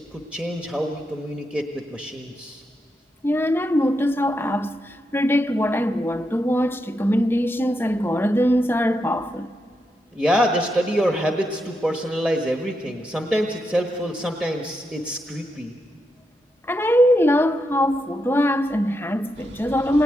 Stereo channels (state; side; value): normal; both; correlation 0.84